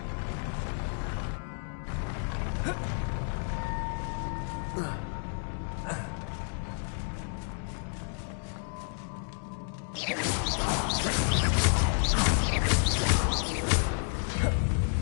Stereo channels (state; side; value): silent; right; 57 dB below the other